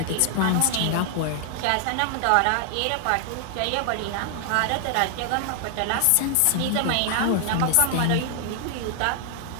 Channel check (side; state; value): both; different; correlation 0.00